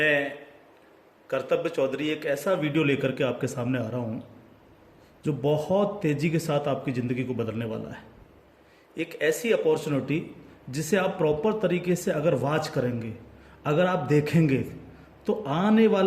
कर्तव्य चौधरी एक ऐसा वीडियो लेकर के आपके सामने आ रहा हूँ जो बहुत तेज़ी के साथ आपकी ज़िंदगी को बदलने वाला है। एक ऐसी अपॉर्चुनिटी जिसे आप प्रॉपर तरीके से अगर वॉच करेंगे, अगर आप देखेंगे तो आने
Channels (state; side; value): identical; both; correlation 1.00